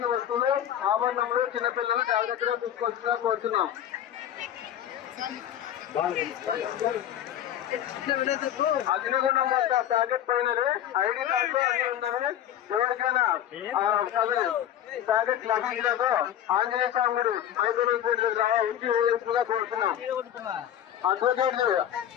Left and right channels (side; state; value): right; quieter; 10.9 dB